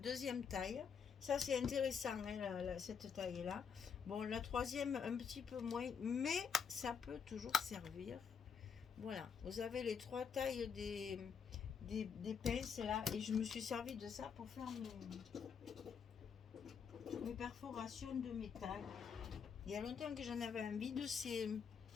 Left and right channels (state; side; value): quieter; right; 6.7 dB